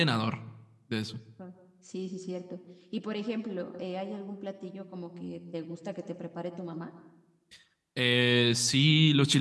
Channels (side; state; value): both; identical; correlation 1.00